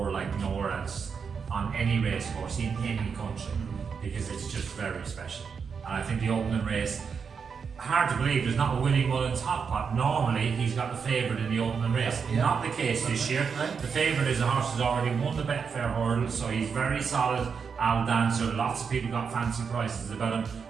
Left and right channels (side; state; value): left; quieter; 6.1 dB